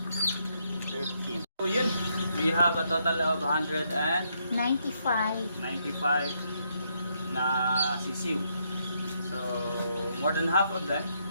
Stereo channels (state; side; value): inverted; both; correlation -0.76